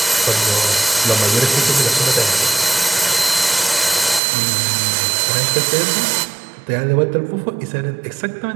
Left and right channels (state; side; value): drops out; left; at 4.2 s